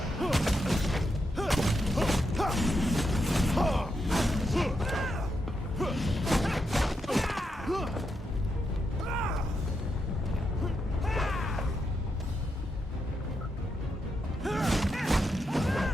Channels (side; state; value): both; normal; correlation 0.83